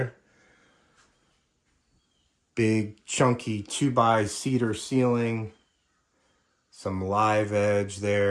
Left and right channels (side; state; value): both; identical; correlation 1.00